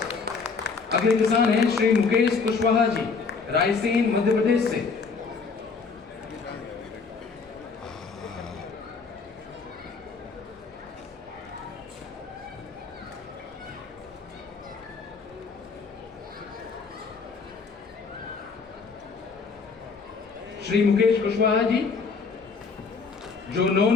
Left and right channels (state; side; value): quieter; right; 4.9 dB